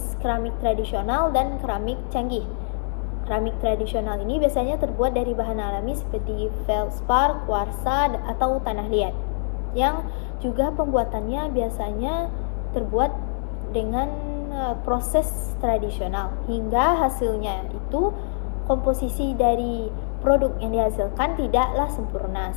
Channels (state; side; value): silent; right; 60 dB below the other